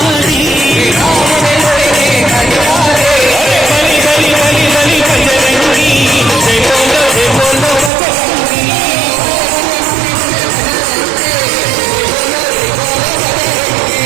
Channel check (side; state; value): left; drops out; at 7.9 s